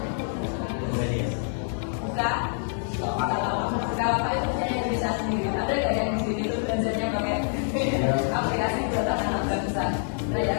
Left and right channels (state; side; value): silent; right; 61 dB below the other